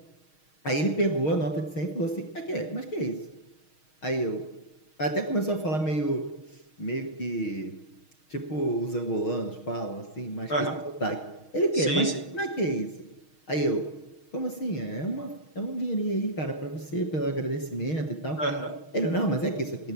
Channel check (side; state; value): right; late; 6.4 ms